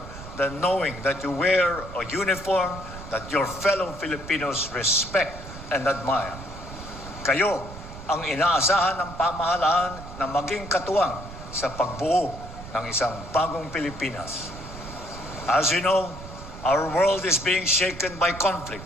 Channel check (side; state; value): right; noise; rumble, 13 dB below the sound